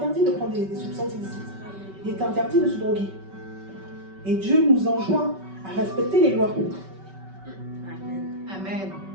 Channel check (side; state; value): left; late; 5.3 ms